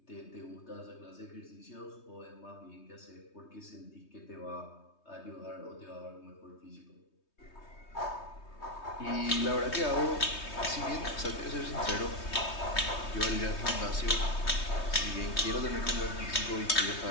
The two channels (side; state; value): right; late; 3.2 ms